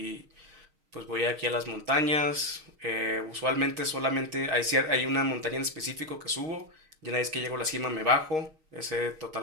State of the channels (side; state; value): left; late; 6.4 ms